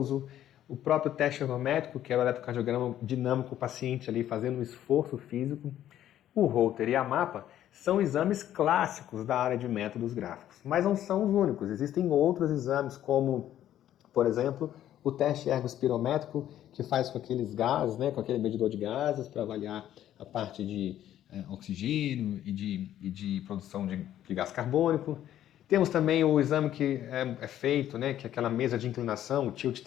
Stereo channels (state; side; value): quieter; right; 11.8 dB